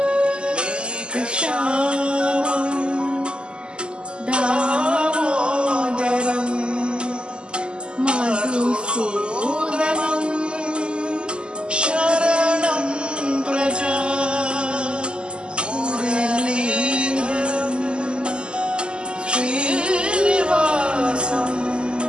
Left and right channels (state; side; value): late; left; 0.050 ms